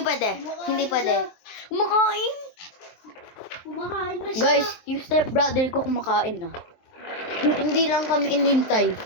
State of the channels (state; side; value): late; right; 23 ms